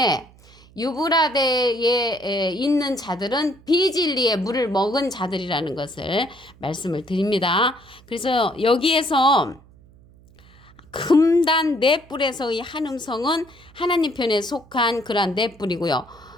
유브라데에 있는 자들은 비진리의 물을 먹은 자들이라는 것을 말씀을 드립니다. 그래서 여기에서 금단 넷불에서의 한 음성은 하나님 편에 속한 그러한 넷불이고요.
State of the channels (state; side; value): noise; right; hum, 26 dB below the sound